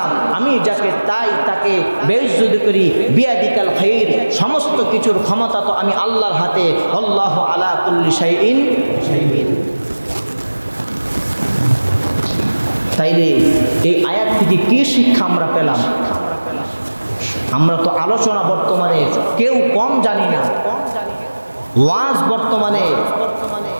আমি যাকে চাই তাকে বেইজ্জত করি। বিয়াদিকাল খাইর, সমস্ত কিছুর ক্ষমতা তো আমি আল্লাহর হাতে। আল্লাহু আলা কুল্লি শাইইন শাহীদ। তাইলে এই আয়াত থেকে কি শিক্ষা আমরা পেলাম? আমরা তো আলোচনা বর্তমানে কেউ কম জানি না, ওয়াজ বর্তমানে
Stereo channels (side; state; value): both; inverted; correlation -1.00